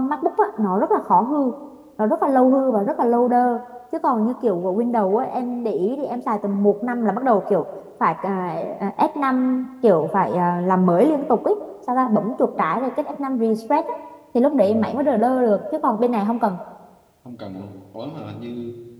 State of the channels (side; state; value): both; identical; correlation 1.00